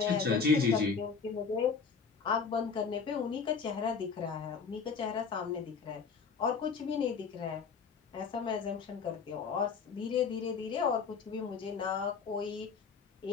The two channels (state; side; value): quieter; right; 5.6 dB